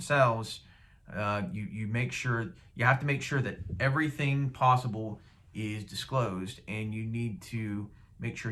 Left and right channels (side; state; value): both; identical; correlation 1.00